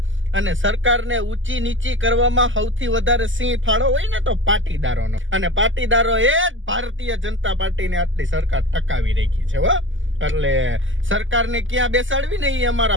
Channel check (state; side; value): late; left; 0.56 ms